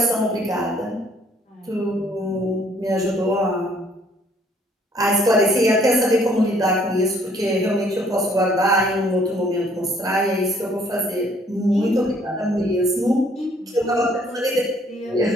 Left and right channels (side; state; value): both; normal; correlation 0.62